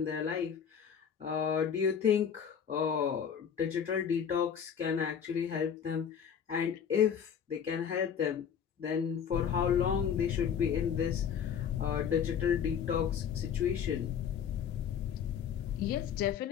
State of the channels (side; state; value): right; quieter; 7.9 dB